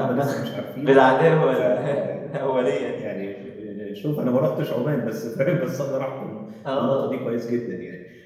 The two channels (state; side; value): identical; both; correlation 1.00